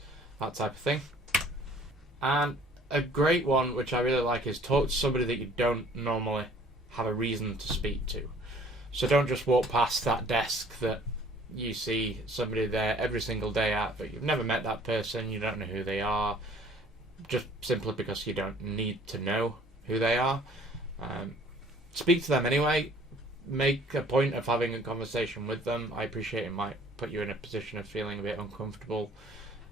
that type of thing. And a great one, which I really like, is talk to somebody that you don't normally have a reason to speak to. So don't just walk past that desk that you see somebody there every single day at, but you've never met that person, you don't know who they are, just simply because you don't need to know who they are. Speak to them anyway. Make a point of having a conversation with them. I appreciate it might put you in a position of feeling a bit uncomfortable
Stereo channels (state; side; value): normal; both; correlation 0.54